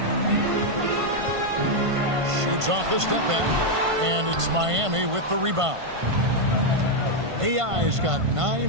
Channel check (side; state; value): left; late; 1.5 ms